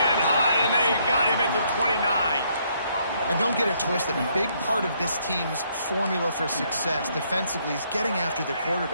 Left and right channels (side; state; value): both; inverted; correlation -0.70